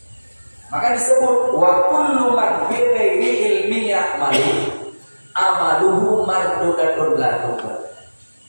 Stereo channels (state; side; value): inverted; both; correlation -1.00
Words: Maka disebut wa kullu man bi ghairi ilmi ya'malu amaluhu mardudatun la tuqbal.